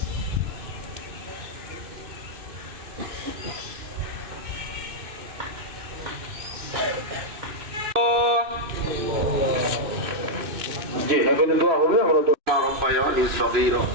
জি এখানে দোয়া হবে আমরা তো ربياني صغيرا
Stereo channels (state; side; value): late; left; 2.6 ms